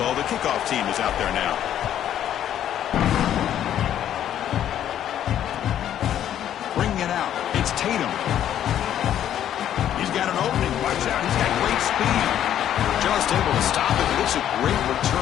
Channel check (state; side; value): quieter; right; 10.7 dB